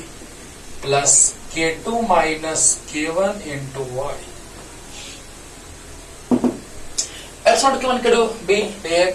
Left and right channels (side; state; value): both; identical; correlation 1.00